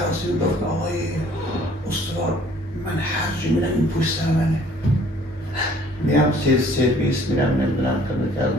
گفت آقای استوار من هر جا میرم این پشت سر منه، میرم سرویس میرم نمیدونم کار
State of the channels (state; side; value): normal; both; correlation 0.56